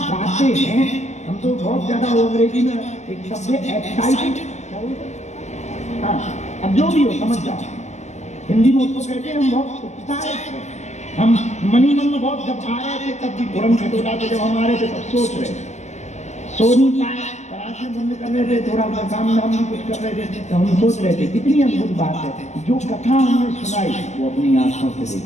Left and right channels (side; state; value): right; late; 0.33 ms